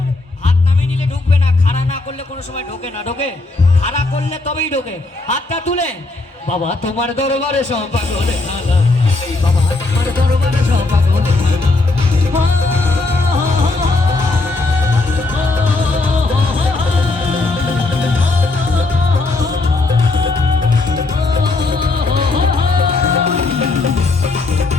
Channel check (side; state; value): right; quieter; 3.3 dB